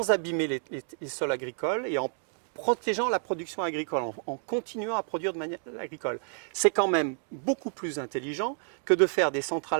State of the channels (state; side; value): silent; left; digital silence